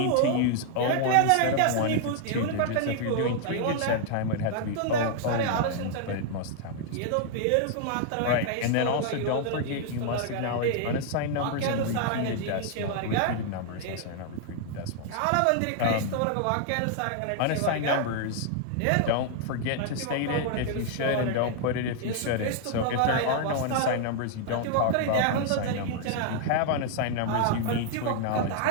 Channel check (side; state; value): both; different; correlation 0.00